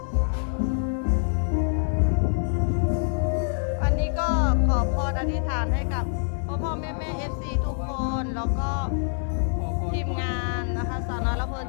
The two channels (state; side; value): silent; right; digital silence